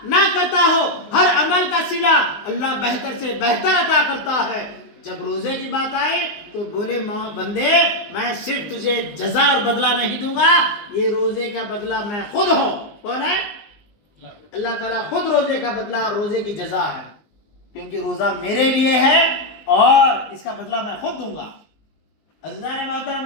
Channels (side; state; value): right; late; 19 ms